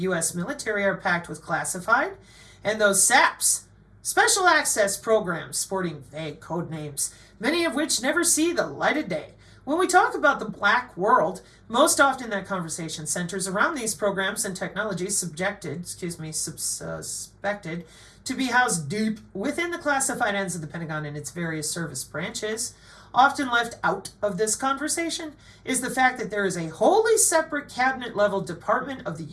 U.S. military are packed with classified, and those SAPs, Special Access Programs, sporting vague code names, many of which never see the light of day. When we talk about the black world, most often that conversation centers around these programs and technologies suspected to be housed deep within the classified ends of the Pentagon and its various service branches. Often left out of this conversation is the fact that there is a wholly separate cabinet-level department of the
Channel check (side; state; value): both; identical; correlation 1.00